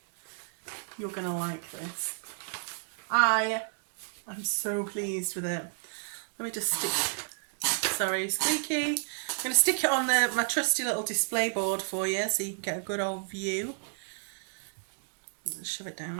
You're going to like this. I am so pleased with it. Let me just stick... Sorry, squeaky. I'm going to stick it on my trusty little display board for you so you can get a good old view. Just shove it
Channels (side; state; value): left; silent; digital silence